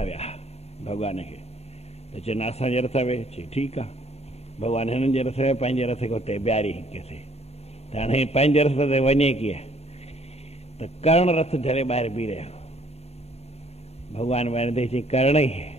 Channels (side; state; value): right; late; 0.30 ms